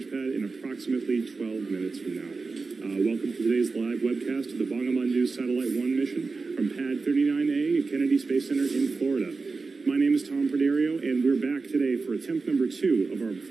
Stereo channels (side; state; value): left; quieter; 4.2 dB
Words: pad in approximately 12 minutes from now. Welcome to today's live webcast of the Bongobondu Satellite 1 mission from Pad 39A at Kennedy Space Center in Florida. My name is Tom Perdario, and we're back today for attempt number 2 of our